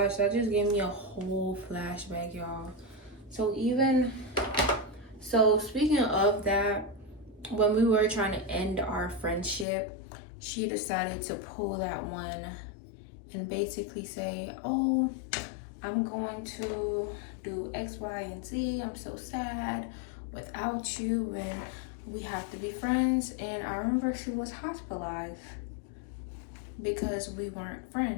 that just gave me a whole flashback, y'all. So speaking of that, when we were trying to end our friendship, she decided to pull that one and basically say, oh, I'm going to do X, Y, and Z. I'm so sad without you and we have to be friends. And I remember she was hospitalized because we weren't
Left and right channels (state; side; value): drops out; right; at 9.7 s